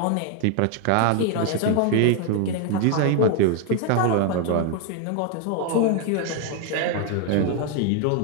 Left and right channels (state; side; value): different; both; correlation 0.00